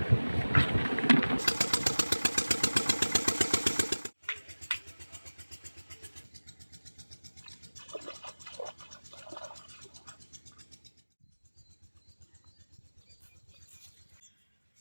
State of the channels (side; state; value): both; inverted; correlation -1.00